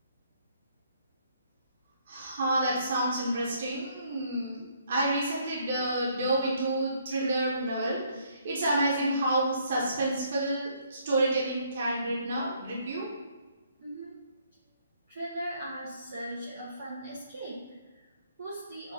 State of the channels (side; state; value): both; inverted; correlation -0.67